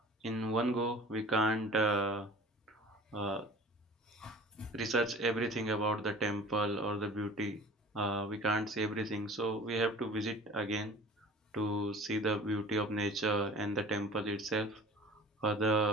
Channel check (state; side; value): normal; both; correlation 0.43